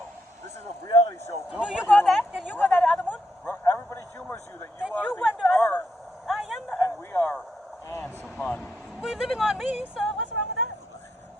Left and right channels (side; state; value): both; normal; correlation 0.80